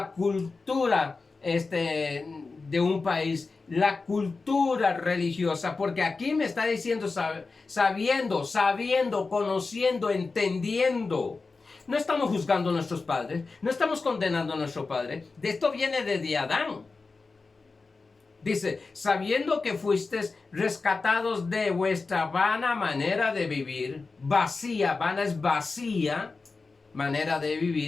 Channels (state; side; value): quieter; right; 4.1 dB